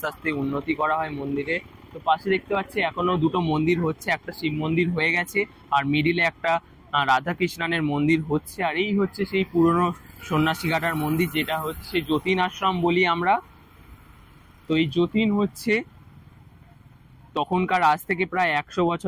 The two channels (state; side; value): identical; both; correlation 1.00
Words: আস্তে উন্নতি করা হয় মন্দিরে। তো পাশে দেখতে পাচ্ছি এখনো 2টো মন্দির হচ্ছে, একটা শিব মন্দির হয়ে গেছে আর মিডিলে একটা রাধা কৃষ্ণানের মন্দির হচ্ছে। আর এই হচ্ছে সেই পুরনো সন্ন্যাসীঘাটার মন্দির, যেটা হচ্ছে যতীন আশ্রম বলি আমরা। তো এই যতীন হচ্ছে তখনকার, আজ থেকে প্রায় 100